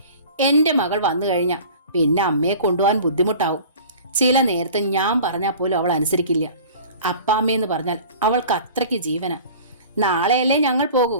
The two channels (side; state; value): both; inverted; correlation -0.43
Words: എൻ്റെ മകൾ വന്നു കഴിഞ്ഞാൽ പിന്നെ അമ്മയെ കൊണ്ടുപോകാൻ ബുദ്ധിമുട്ടാവും. ചില നേരത്തെ ഞാൻ പറഞ്ഞാൽ പോലും അവൾ അനുസരിക്കില്ല. അപ്പാമ്മയെന്ന് പറഞ്ഞാൽ അവൾക്ക് അത്രയ്ക്ക് ജീവന. നാളെയല്ലേ ഞങ്ങൾ പോകൂ.